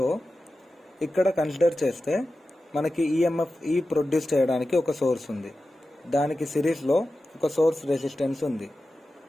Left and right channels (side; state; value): both; normal; correlation 0.93